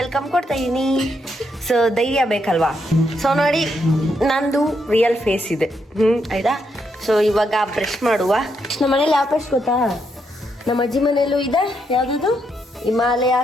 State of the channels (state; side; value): normal; both; correlation 0.79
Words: ಕೊಡ್ತಾ ಇದೀನಿ. ಸೊ ಧೈರ್ಯ ಬೇಕಲ್ವಾ? ಸೊ ನೋಡಿ, ನಂದು ರಿಯಲ್ ಫೇಸ್ ಇದೆ. ಆಯ್ತಾ? ಸೊ ಇವಾಗ ಬ್ರಷ್ ಮಾಡುವ. ನಮ್ಮ ಮನೇಲಿ ಯಾವ ಬ್ರಷ್ ಗೊತ್ತಾ? ನಮ್ಮ ಅಜ್ಜಿ ಮನೇಲೂ ಇದೆ. ಯಾವ್ದು? Himalaya